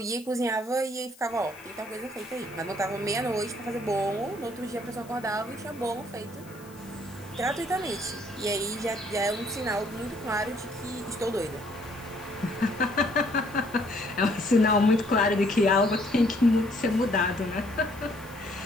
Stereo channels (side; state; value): left; noise; hiss, 23 dB below the sound